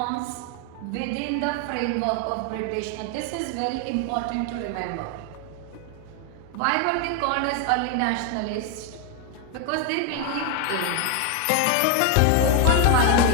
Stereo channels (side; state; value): both; different; correlation 0.01